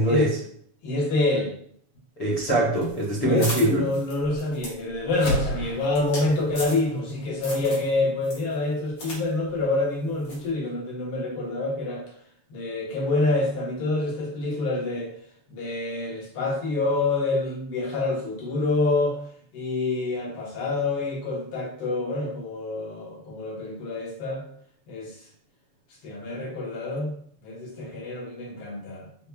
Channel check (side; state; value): right; late; 7.1 ms